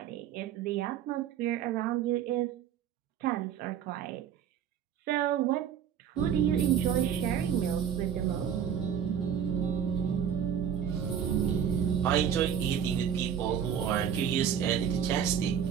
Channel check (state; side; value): quieter; left; 8.5 dB